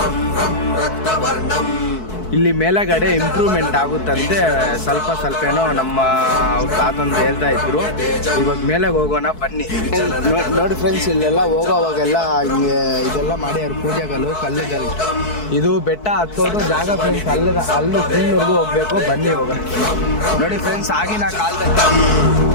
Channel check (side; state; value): right; late; 4.6 ms